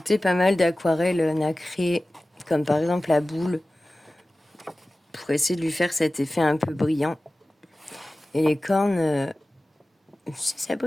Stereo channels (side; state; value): both; normal; correlation 0.96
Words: pas mal d'aquarelles nacrées, comme par exemple la boule, pour essayer de lui faire cet effet un peu brillant. Et les cornes, ça